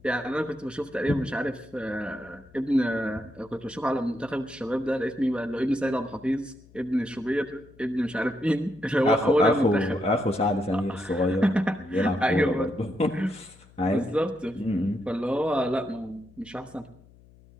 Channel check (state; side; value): noise; left; hum, 25 dB below the sound